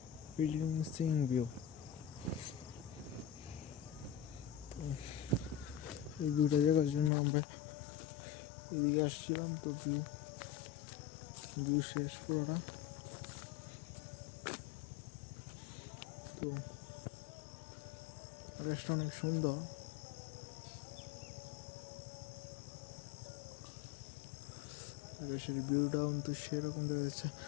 ফিলিংসিং ভিউ। এই ভিউটা দেখার জন্য আমরা এদিকে আসছিলাম। তো ভিউ শেষ পুরোটা। তো আকাশটা অনেক সুন্দর। আকাশের ভিউটা কিন্তু সেরকম দেখা যাচ্ছে।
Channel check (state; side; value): drops out; right; at 7.1 s